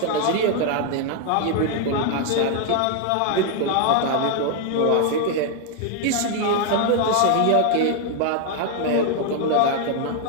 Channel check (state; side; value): different; both; correlation 0.00